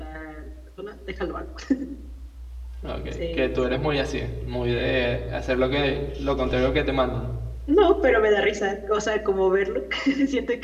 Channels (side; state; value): both; identical; correlation 1.00